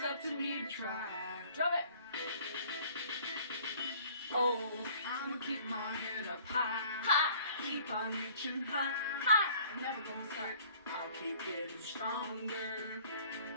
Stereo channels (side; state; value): both; inverted; correlation -0.53